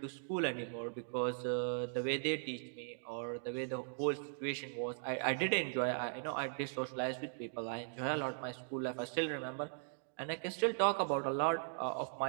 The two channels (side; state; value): left; silent; digital silence